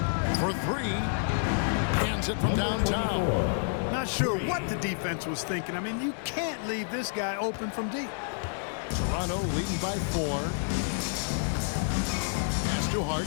For three. Hands it from downtown. Not sure what the defense was thinking. I mean, you can't leave this guy open from deep. Toronto leading by 4. Pass to Hart.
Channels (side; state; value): right; silent; 58 dB below the other